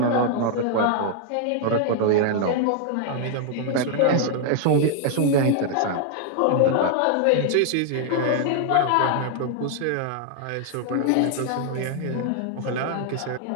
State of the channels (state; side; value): different; both; correlation 0.00